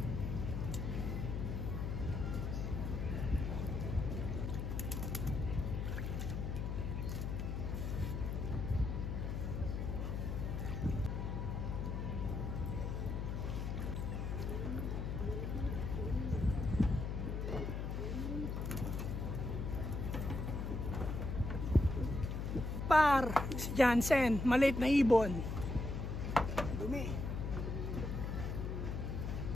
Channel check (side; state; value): left; noise; hum, 2 dB below the sound